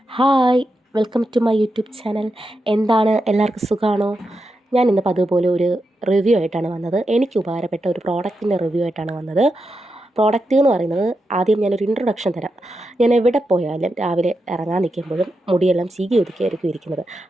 Hi, welcome to my YouTube channel. എന്താണ്, എല്ലാവർക്കും സുഖമാണോ? ഞാൻ ഇന്ന് അതുപോലെ ഒരു റിവ്യൂ ആയിട്ടാണ് വന്നത്. എനിക്ക് ഉപകാരപ്പെട്ട ഒരു പ്രോഡക്റ്റിൻ്റെ റിവ്യൂ ആയിട്ടാണ് വന്നത്. പ്രോഡക്റ്റ് എന്ന് പറയുന്നത്, ആദ്യം ഞാനൊരു ഇൻട്രൊഡക്ഷൻ തരാം. ഞാൻ എവിടെ പോയാലും രാവിലെ ഇറങ്ങാൻ നിൽക്കുമ്പോഴും മുടിയെല്ലാം ചീകി ഒതുക്കിയായിരിക്കും ഇരിക്കുന്നത്.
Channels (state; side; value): normal; both; correlation 0.87